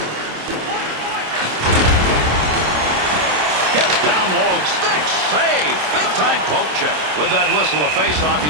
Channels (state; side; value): late; left; 27 ms